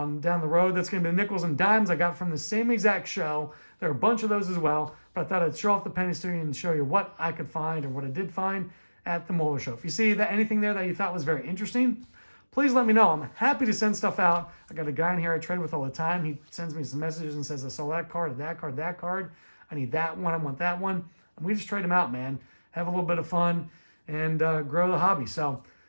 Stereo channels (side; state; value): both; inverted; correlation -1.00